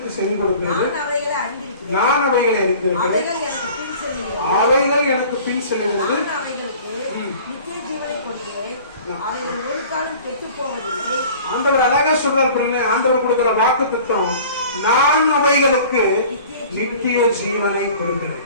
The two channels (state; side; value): inverted; both; correlation -0.45